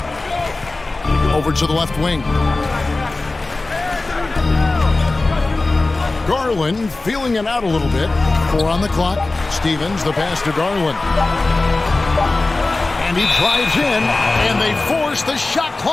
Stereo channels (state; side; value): quieter; right; 3.2 dB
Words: Over to the left wing. Garland feeling it out a little bit. 4 on the clock. Stevens, the pass to Garland. And he drives in, and they force the shot